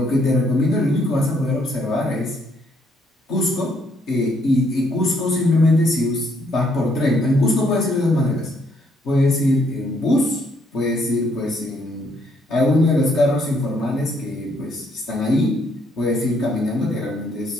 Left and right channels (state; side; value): normal; both; correlation 0.70